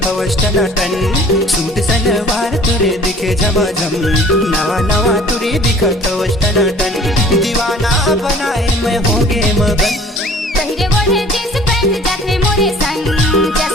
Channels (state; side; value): normal; both; correlation 0.51